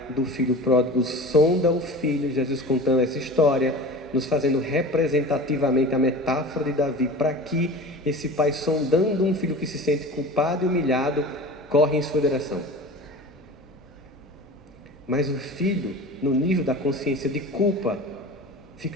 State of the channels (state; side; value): normal; both; correlation 0.36